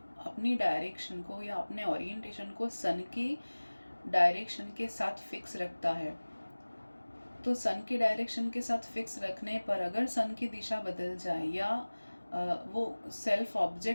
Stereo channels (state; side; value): inverted; both; correlation -1.00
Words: अपनी डायरेक्शन को या अपने ओरिएंटेशन को सन के डायरेक्शन के साथ फिक्स रखता है, तो सन के डायरेक्शन के साथ फिक्स रखने पर अगर सन की दिशा बदल जाए या वो सेल्फ